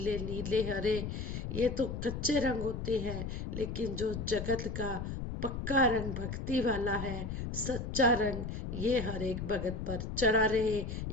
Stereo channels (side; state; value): left; noise; rumble, 5 dB below the sound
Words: नीले हरे, ये तो कच्चे रंग होते हैं, लेकिन जो जगत का पक्का रंग भक्ति वाला है, सच्चा रंग, ये हर एक भगत पर चढ़ा रहे,